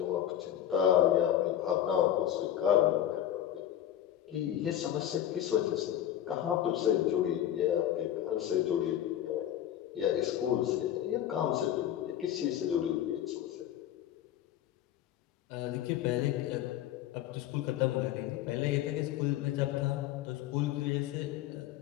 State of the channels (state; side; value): quieter; right; 11.3 dB